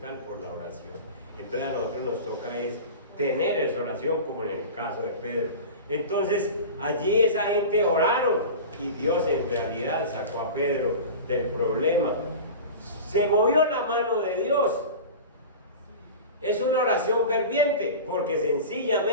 por la oración. Entonces a nosotros nos toca es tener esa oración, como en el caso de Pedro. Entonces allí esa gente oraron, y Dios en realidad sacó a Pedro del problema. Se movió la mano de Dios. Es una oración ferviente, porque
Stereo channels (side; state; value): both; inverted; correlation -0.32